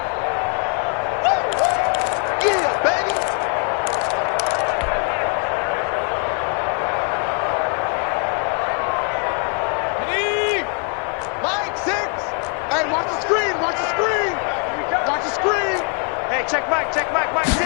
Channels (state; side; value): quieter; right; 39.4 dB